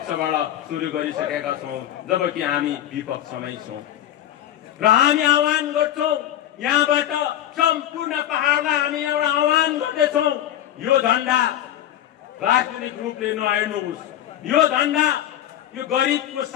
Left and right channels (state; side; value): quieter; right; 11.8 dB